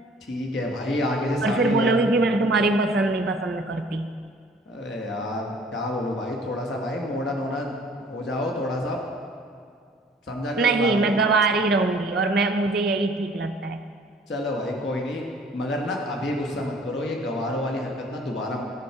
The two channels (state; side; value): normal; both; correlation 0.54